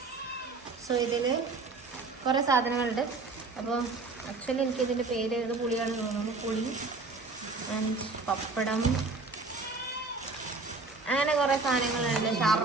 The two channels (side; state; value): left; quieter; 3.8 dB